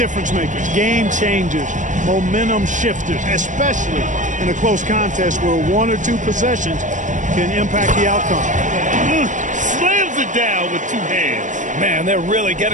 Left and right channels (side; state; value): left; late; 0.36 ms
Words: makers, game changers, momentum shifters, especially in a close contest where one or two possessions can impact the outcome. Slams it down with two hands. Man, they're really